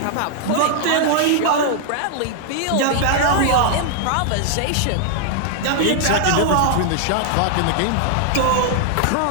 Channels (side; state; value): both; different; correlation 0.00